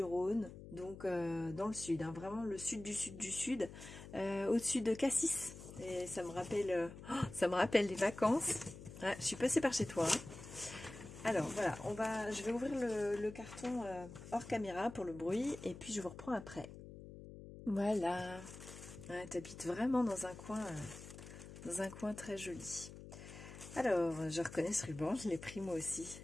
donc dans le sud, hein, vraiment le sud du sud du sud, au-dessus de Cassis. Et ça me rappelle les vacances. Ouais, je suis passée par chez toi. Hein. Alors voilà, je vais ouvrir le carton hors caméra pour le bruit et puis je vous reprends après. Voilà. Ouais, t'habites vraiment dans un coin très joli. Alors, je reconnais ce ruban, je l'ai pris moi aussi.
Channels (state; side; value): noise; left; hum, 14 dB below the sound